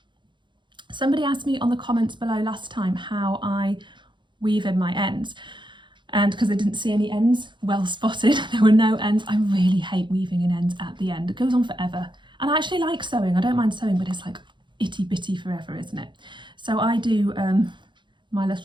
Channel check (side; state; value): left; late; 0.23 ms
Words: Somebody asked me on the comments below last time how I weave in my ends, and because I didn't see any ends well spotted, there were no ends. I really hate weaving in ends at the end. It goes on forever, and I actually like sewing. I don't mind sewing, but it's like itty bitty forever, isn't it? So I do, my